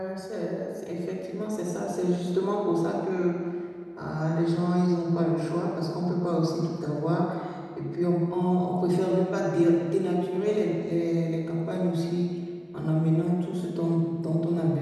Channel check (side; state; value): both; identical; correlation 1.00